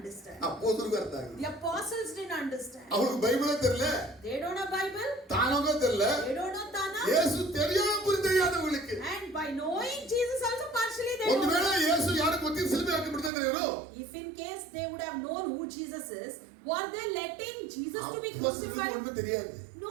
ಅಪೊಸ್ತಲರಿಗೂ ಅರ್ಥ ಆಗಿಲ್ಲ. The apostles didn't understand. ಅವ್ರಿಗೆ ಬೈಬಲ್ ತೆರಲ. They don't know Bible. ತಾನೋಗ ತೆರಲ. They don't know Tana. ಯೇಸು தெரியாம புரியாதவங்களுக்கு. And by knowing Jesus also partially they ಒಂದು don't. ವೇಳೆ ಯೇಸು ಯಾರು ಗೊತ್ತಿಲ್ಲ ಸಿಲುಬೆ ಹಾಕಿ ಬಿಡ್ತಿದ್ರು ಇವರು. If in case they would have known who Jesus is, were they letting Jesus to be crucified? ஒண்ணுமே தெரியாது.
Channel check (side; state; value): left; drops out; at 13.3 s